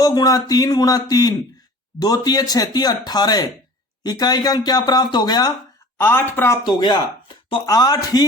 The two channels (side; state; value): both; normal; correlation 0.44